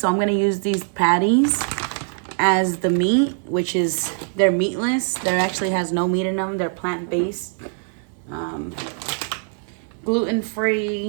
I'm gonna use these patties as the meat, which is they're meatless. There actually has no meat in them. They're plant-based,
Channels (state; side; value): silent; left; 56 dB below the other